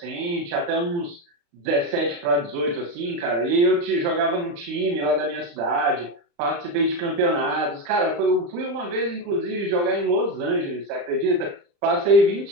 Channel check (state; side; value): late; left; 35 ms